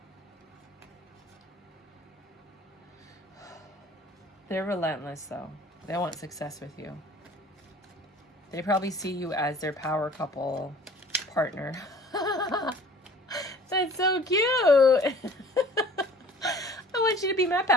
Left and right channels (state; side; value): normal; both; correlation 0.48